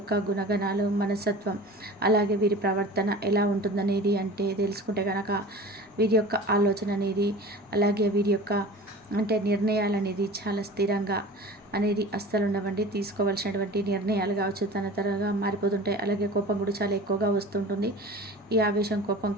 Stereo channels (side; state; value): both; normal; correlation 0.38